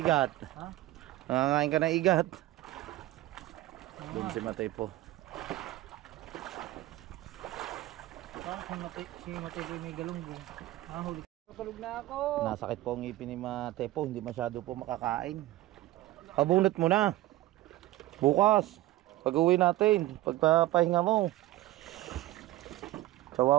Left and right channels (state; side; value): quieter; left; 16.5 dB